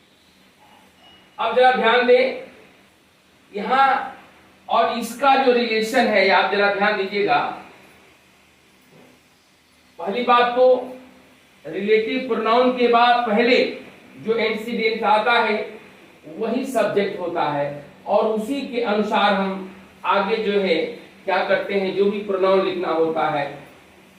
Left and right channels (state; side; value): identical; both; correlation 1.00